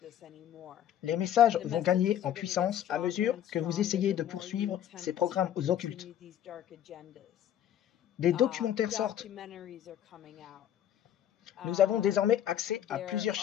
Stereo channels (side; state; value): right; quieter; 10.7 dB